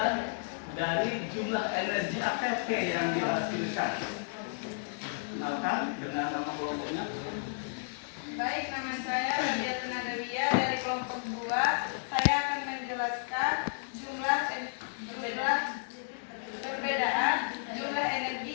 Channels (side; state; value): right; silent; 56 dB below the other